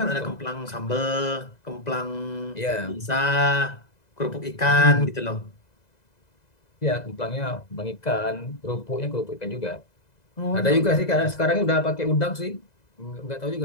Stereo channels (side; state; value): right; late; 2.0 ms